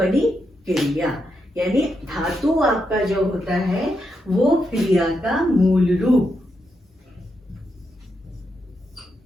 क्रिया। यानी धातु आपका जो होता है वो क्रिया का मूल रूप,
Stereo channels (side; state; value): both; normal; correlation 0.83